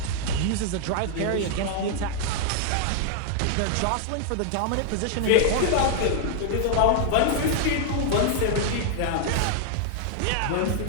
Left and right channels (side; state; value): both; different; correlation 0.00